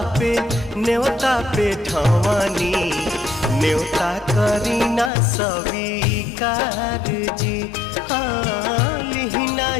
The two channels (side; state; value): right; drops out; at 5.1 s